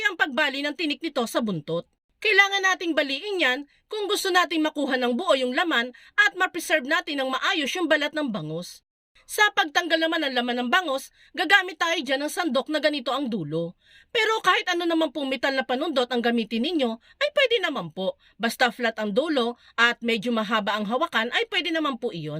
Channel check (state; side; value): identical; both; correlation 1.00